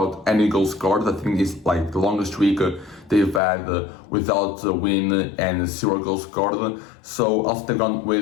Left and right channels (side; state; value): right; drops out; at 3.4 s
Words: any goals scored. I think it's like the longest streak they've had without a win and 0 goals scored. So also they've gone